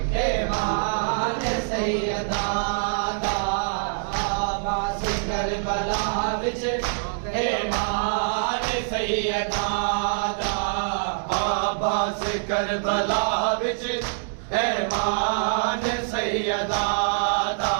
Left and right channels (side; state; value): left; silent; digital silence